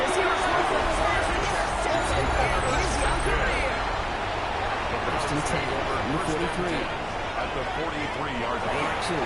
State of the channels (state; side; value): identical; both; correlation 1.00